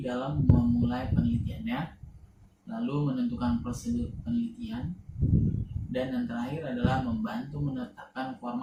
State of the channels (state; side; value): identical; both; correlation 1.00